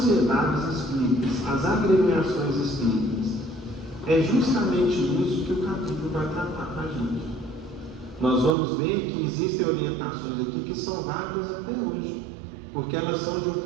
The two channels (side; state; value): left; drops out; at 8.6 s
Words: espíritas, as agremiações espíritas? É justamente isso que o capítulo vai tratar para a gente. Nós vamos ver que existem orientações aqui que são válidas até hoje, porque elas são de um